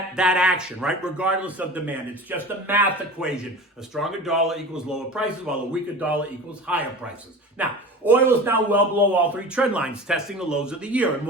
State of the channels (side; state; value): both; normal; correlation 0.35